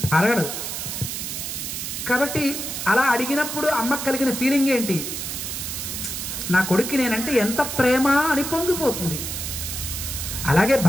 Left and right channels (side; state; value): right; noise; hiss, 5 dB below the sound